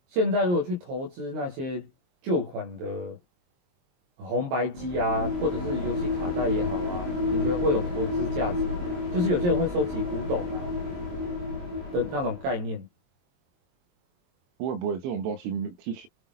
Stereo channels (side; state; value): left; late; 23 ms